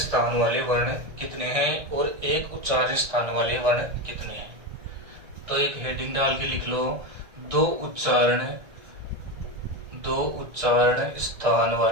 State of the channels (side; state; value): left; late; 1.6 ms